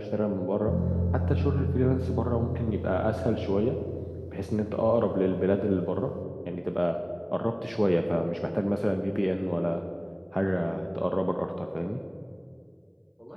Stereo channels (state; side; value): identical; both; correlation 1.00